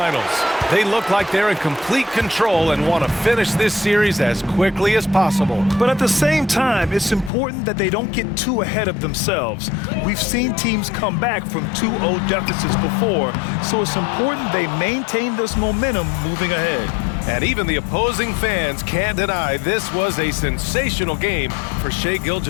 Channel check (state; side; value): drops out; right; at 7.3 s